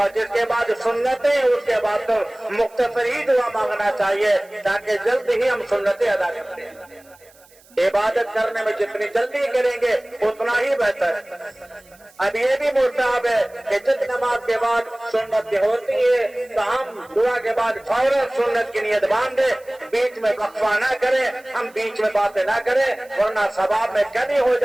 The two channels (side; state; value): right; noise; hiss, 28 dB below the sound